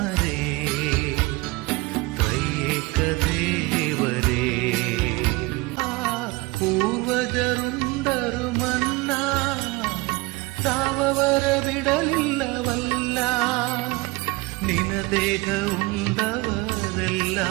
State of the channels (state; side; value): quieter; left; 23.4 dB